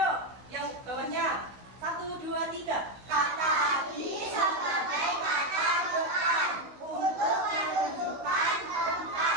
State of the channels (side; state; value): left; late; 16 ms